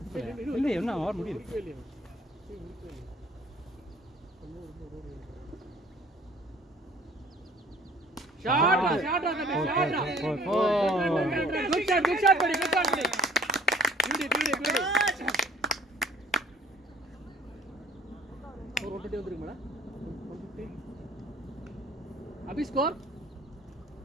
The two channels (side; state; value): both; normal; correlation 0.54